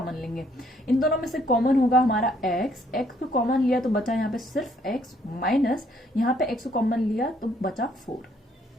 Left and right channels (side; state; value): both; normal; correlation 0.67